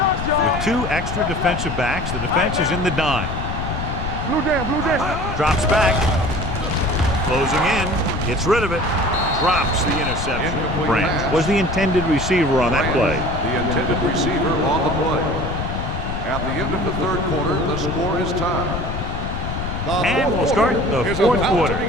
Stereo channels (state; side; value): noise; left; rumble, 4 dB below the sound